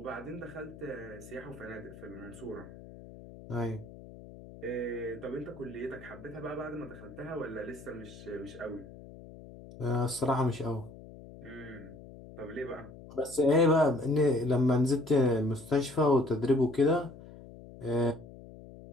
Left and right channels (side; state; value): left; noise; hum, 17 dB below the sound